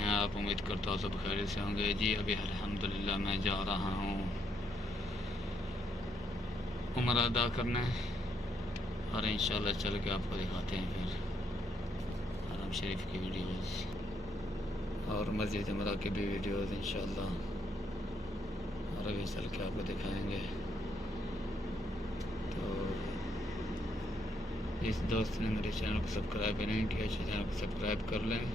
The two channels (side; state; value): both; normal; correlation 0.75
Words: आप? उम्मीद करता हूँ सब खैरियत से होंगे। जी अभी अल्हम्दुलिल्लाह मैं जा रहा हूँ उम्रा अदा करने और इंशाल्लाह चल के आपको दिखाते हैं फिर हरम शरीफ की वीडियोस और मस्जिद उम्रा की भी वीडियोस इंशाल्लाह, और अभी चल के आपको दिखाएंगे। तो जिस दोस्त ने मेरे चैनल को सब्सक्राइब नहीं किया चैनल को सब्सक्राइब कर लें